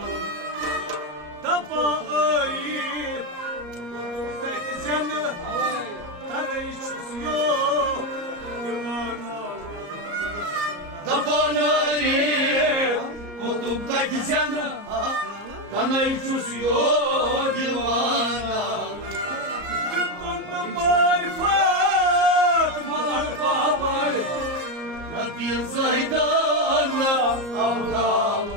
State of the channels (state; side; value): late; left; 34 ms